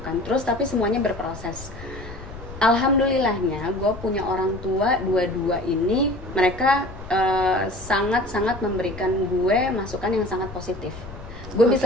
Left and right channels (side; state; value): left; noise; rumble, 14 dB below the sound